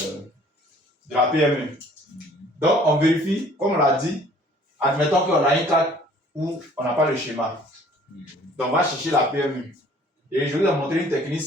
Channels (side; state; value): both; normal; correlation 0.55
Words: la PMU. Donc, on vérifie, comme on l'a dit, admettons qu'on a une carte où on n'a pas le schéma. Donc, on va chercher la PMU. Et je vais vous montrer une technique